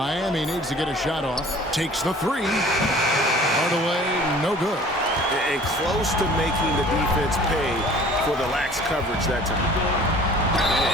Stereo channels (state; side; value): normal; both; correlation 0.49